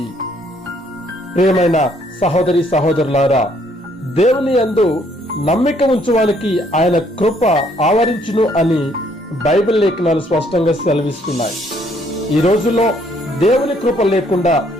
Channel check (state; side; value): normal; both; correlation 0.66